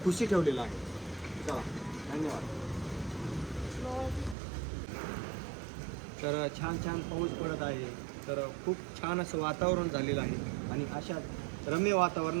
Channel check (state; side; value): drops out; left; at 4.4 s